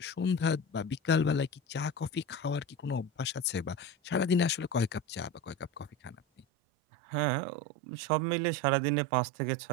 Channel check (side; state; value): left; drops out; at 6.5 s